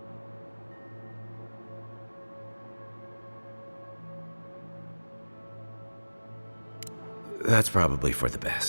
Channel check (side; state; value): both; inverted; correlation -1.00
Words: That's probably for the